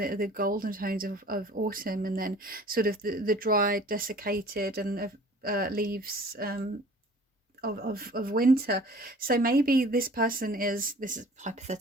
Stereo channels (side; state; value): both; normal; correlation 0.48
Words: golden tones of autumn, and then sort of the dried, desiccated and leaves of winter. So maybe this is a